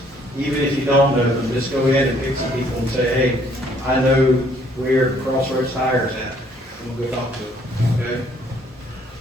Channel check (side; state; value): both; normal; correlation 0.63